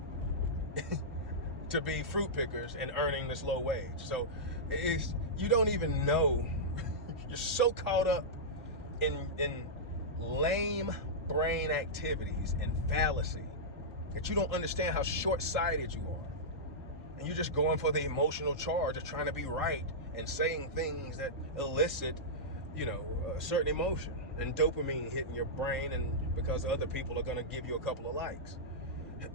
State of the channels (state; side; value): normal; both; correlation -0.11